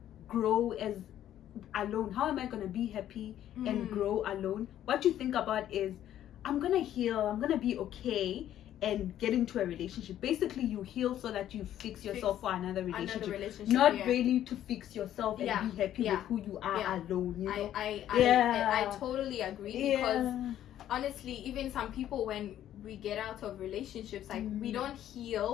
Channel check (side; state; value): right; quieter; 11.6 dB